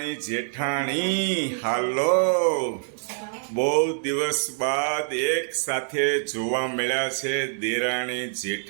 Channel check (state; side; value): silent; left; digital silence